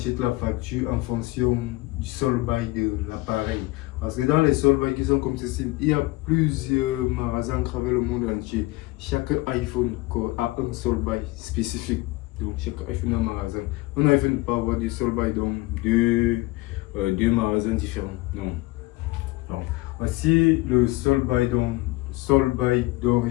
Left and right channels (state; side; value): quieter; right; 20.9 dB